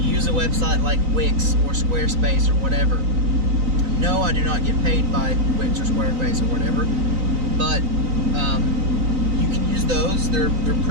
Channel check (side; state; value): left; late; 3.9 ms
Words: a website like Wix or Squarespace or whatever. No, I do not get paid by Wix or Squarespace or whatever, but you can use those. They're